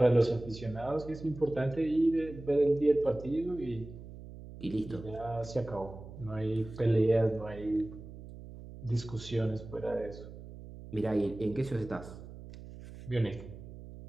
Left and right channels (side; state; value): right; noise; hum, 14 dB below the sound